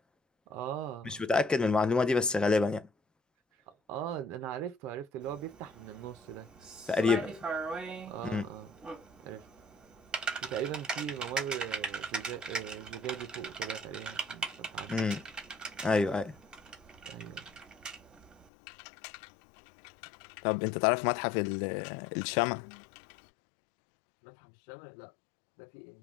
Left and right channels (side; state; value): right; drops out; at 18.5 s